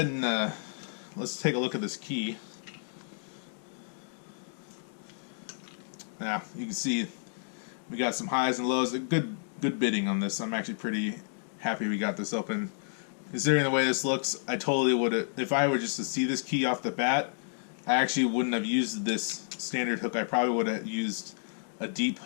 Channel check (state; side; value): silent; right; digital silence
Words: and let's take a look at this key. Now you can see we got some highs and lows. Good bidding on this. I'm actually pretty happy we got this open. Considering the way this looks, I totally would have, if I were just to see this key off the bat, I actually wouldn't have used this standard hook. I probably would have used a deep